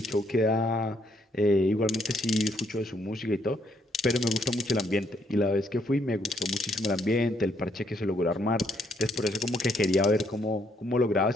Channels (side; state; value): both; normal; correlation 0.71